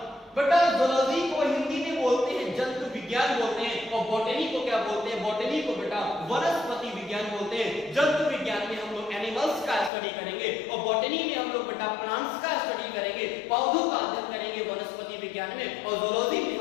बेटा ज़ूलॉजी को हिंदी में बोलते हैं जंतु विज्ञान बोलते हैं, और बॉटनी को क्या बोलते हैं, बॉटनी को बेटा वनस्पति विज्ञान बोलते हैं। जंतु विज्ञान में हम लोग एनिमल्स का स्टडी करेंगे, और बॉटनी में हम लोग बेटा प्लांट्स का स्टडी करेंगे, पौधों का अध्ययन करेंगे वनस्पति विज्ञान में, और ज़ूलॉजी में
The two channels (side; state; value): right; drops out; at 9.9 s